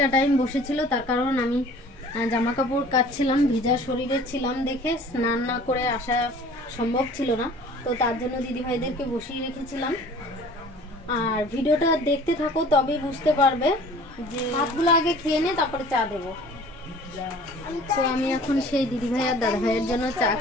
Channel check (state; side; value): normal; both; correlation 0.48